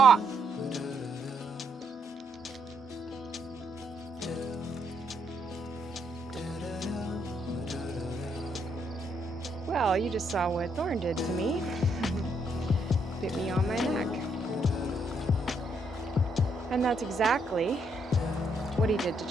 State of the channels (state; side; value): normal; both; correlation 0.74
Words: Well, you just saw what Thorn did to me. Bit me on my neck. And that's exactly what he did to